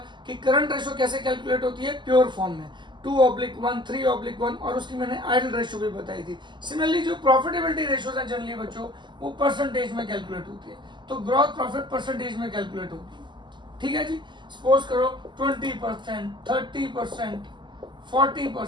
कि करंट रेशियो कैसे कैलकुलेट होती है प्योर फॉर्म में, 2/1, 3/1, और उसकी मैंने आइडल रेशियो भी बताई थी। सिमिलरली जो प्रॉफिटेबिलिटी रेशियोज हैं जनरली बच्चों, वो परसेंटेज में कैलकुलेट होती है। तो ग्रॉस प्रॉफिट परसेंटेज में कैलकुलेट होती है, ठीक है जी। सपोज करो 20%, 30%,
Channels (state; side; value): late; left; 0.22 ms